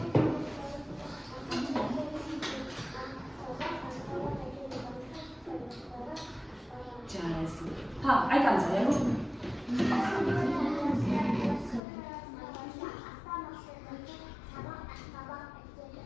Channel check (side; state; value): right; drops out; at 11.8 s